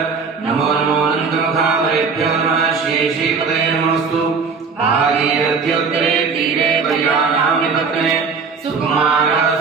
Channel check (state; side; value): quieter; left; 5.1 dB